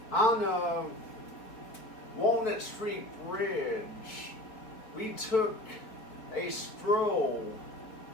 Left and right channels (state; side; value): late; right; 4.5 ms